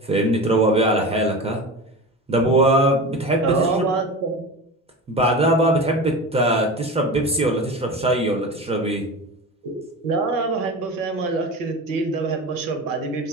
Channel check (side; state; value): both; normal; correlation 0.29